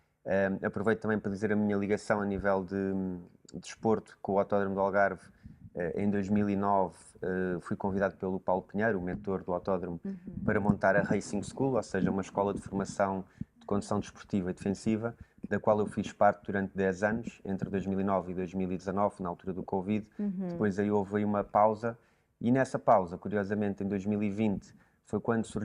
Aproveito também para dizer a minha ligação a nível de desporto com o Autódromo do Algarve. Em 2009 fui convidado pelo Paulo Pinheiro, o mentor do autódromo, para montar a Racing School, ou seja, uma escola de formação de condução desportiva e defensiva, da qual eu fiz parte durante 10 anos, entre 2009 e 2019, na altura do Covid. Depois aí houve aí uma pausa, e nessa pausa, curiosamente, em 2020, foi quando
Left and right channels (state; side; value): identical; both; correlation 1.00